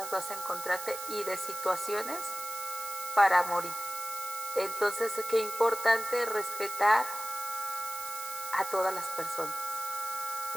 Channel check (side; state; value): right; noise; hiss, 9 dB below the sound